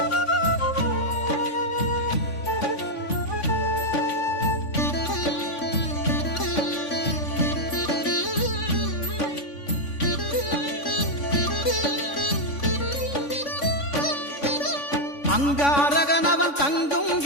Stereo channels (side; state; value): right; late; 3.5 ms